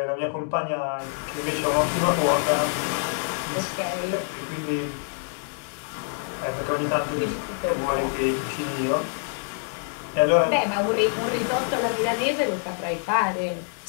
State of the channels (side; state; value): right; silent; digital silence